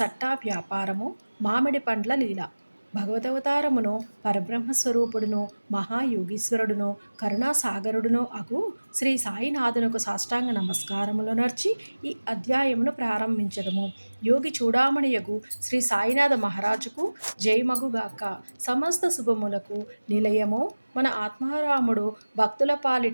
వ్యాపారము, మామిడి పండ్ల లీల. భగవదవతారమును, పరబ్రహ్మస్వరూపుడును, మహాయోగీశ్వరుడును, కరుణాసాగరుడును అగు శ్రీ సాయినాథునకు సాష్టాంగ నమస్కారములు నర్చి ఈ అధ్యాయమును ప్రారంభించదము. యోగి చూడామణియగు శ్రీ సాయినాథ మహారాజుకు జయమగుగాక. సమస్త శుభములకు నిలయము మన ఆత్మారాముడు భక్తుల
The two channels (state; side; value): inverted; both; correlation -1.00